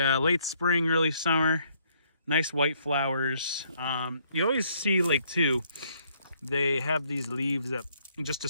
spring, early summer. Nice white flowers. You always see like too, they have these leaves at just a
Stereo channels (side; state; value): both; inverted; correlation -0.68